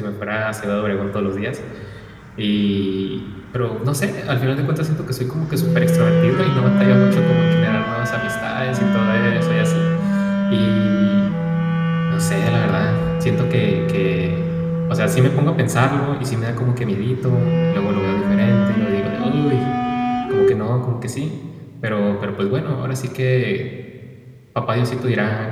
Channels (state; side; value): identical; both; correlation 1.00